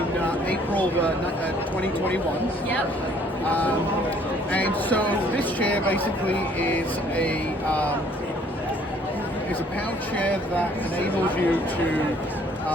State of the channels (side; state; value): both; normal; correlation 0.60